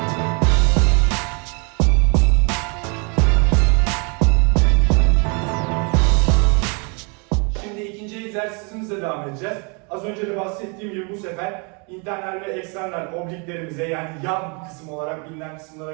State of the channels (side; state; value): left; quieter; 33.7 dB